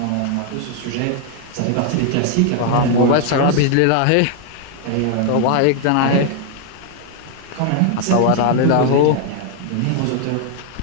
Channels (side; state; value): both; different; correlation 0.00